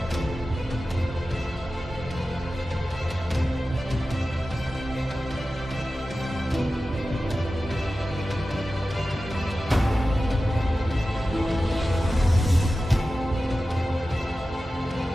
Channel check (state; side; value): normal; both; correlation 0.94